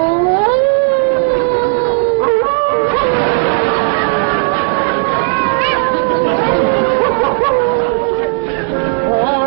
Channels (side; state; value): left; silent; 61 dB below the other